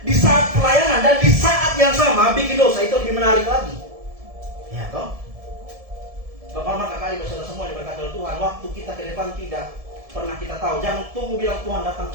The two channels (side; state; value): left; late; 1.7 ms